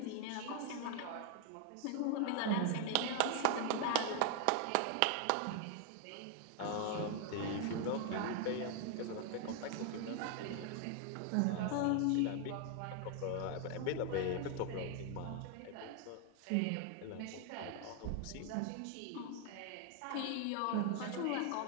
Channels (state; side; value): different; both; correlation 0.00